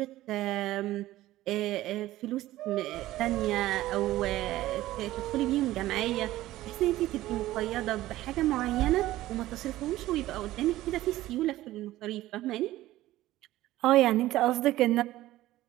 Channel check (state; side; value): quieter; left; 15.7 dB